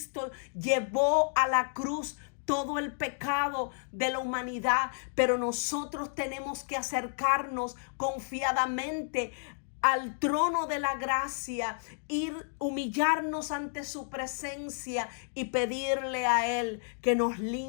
llevó a la cruz todo el pecado de la humanidad, pero nosotros tenemos que acercarnos confiadamente al trono de la gracia, ir humillarnos ante su presencia y pedirle a Él que nos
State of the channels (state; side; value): silent; right; digital silence